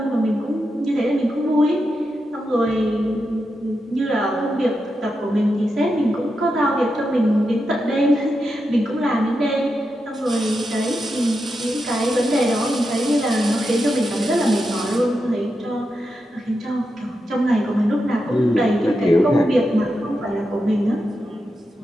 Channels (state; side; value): normal; both; correlation 0.87